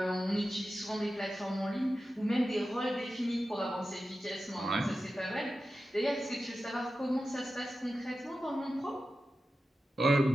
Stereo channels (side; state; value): both; normal; correlation 0.93